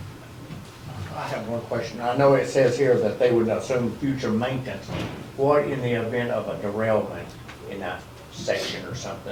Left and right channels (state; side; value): identical; both; correlation 1.00